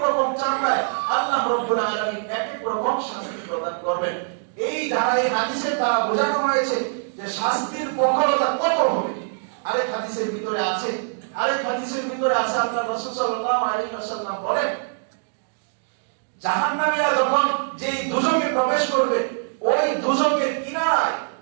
রকম চামড়ায় আল্লাহ রাব্বুল আলামিন এক এক রকম শাস্তি প্রদান করবেন। এই ধারায় হাদিসের দ্বারা বোঝানো হয়েছে যে শাস্তির প্রখরতা কত হবে। আরেক হাদিসের ভিতরে আছে, আল্লাহ রাসূল সাল্লাল্লাহু আলাইহি ওয়াসাল্লাম বলেন, জাহান্নামীরা যখন যেই দুজকে প্রবেশ করবে, ওই দুজকের কিনারায়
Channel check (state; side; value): silent; left; digital silence